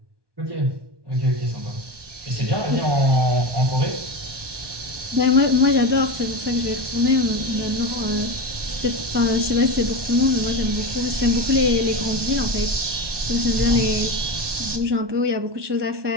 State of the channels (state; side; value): late; left; 1.2 ms